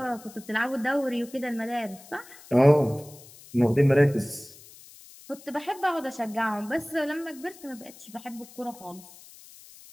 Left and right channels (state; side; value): noise; left; hiss, 21 dB below the sound